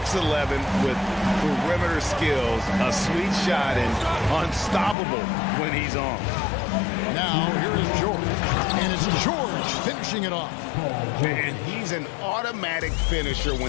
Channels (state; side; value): drops out; right; at 5.0 s